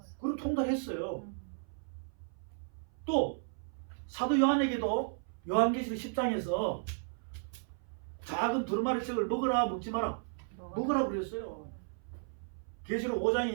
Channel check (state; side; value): silent; left; 55 dB below the other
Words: 그리고 통달했어요. 또 사도 요한에게도 요한계시록 10장에서 작은 두루마리 책을 먹으라 먹지 마라 먹으라 그랬어요. 계시록 5장에